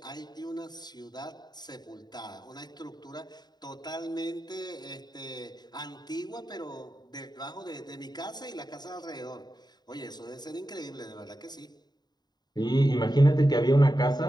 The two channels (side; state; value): right; late; 0.20 ms